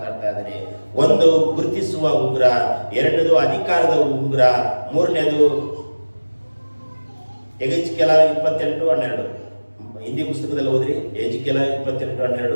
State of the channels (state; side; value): inverted; both; correlation -1.00